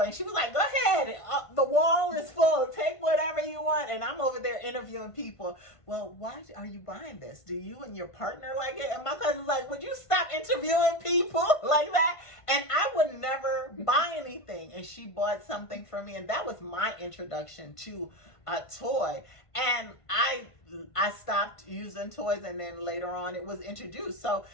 And she was like, "Go ahead, the wall is full. Take whatever you want." And I'm over there interviewing people. "Well, why are you buying this? Do you and your partner like it?" And my cousin's like, "Would you stop interviewing people like that?" And I would never buy anything. And she bought something for me, and that was my introduction to a toy. And I stopped using toys, and then later on it was introduced. So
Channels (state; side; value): late; right; 1.5 ms